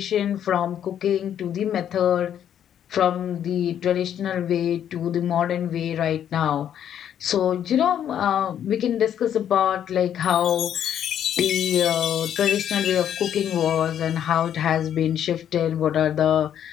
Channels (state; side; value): quieter; right; 9.7 dB